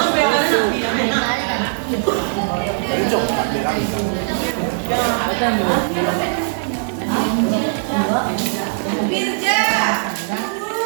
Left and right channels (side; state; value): left; silent; digital silence